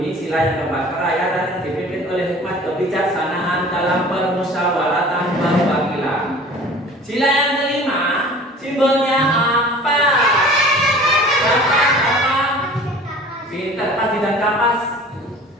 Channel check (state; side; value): normal; both; correlation 0.44